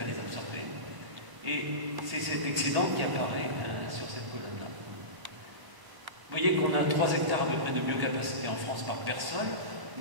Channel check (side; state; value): left; late; 1.1 ms